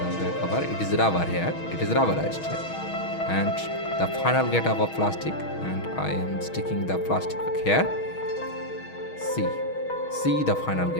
back cover, it is rubber here. It is rubberized here, and the final get up of plastic, and I am sticking the plastic here. See the final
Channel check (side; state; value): right; late; 6.3 ms